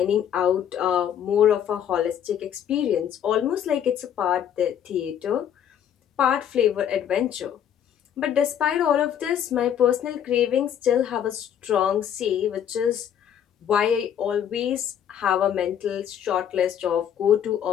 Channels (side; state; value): right; quieter; 9.3 dB